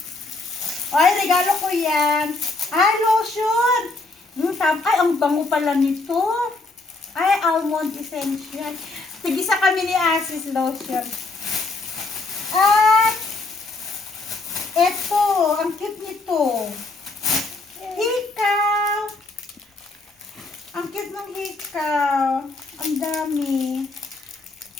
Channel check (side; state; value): right; quieter; 3.3 dB